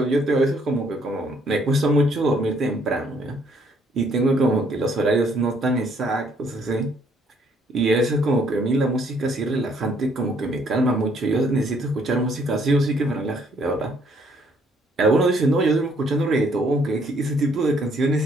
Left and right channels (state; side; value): normal; both; correlation 0.66